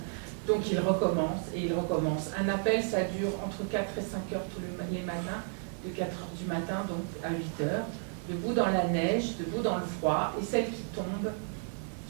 Donc ils recommencent et ils recommencent. Un appel, ça dure entre 4 et 5 heures tous les matins, de 4 heures du matin donc à 8 heures, debout dans la neige, debout dans le froid, et celles qui tombent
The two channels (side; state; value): left; silent; 56 dB below the other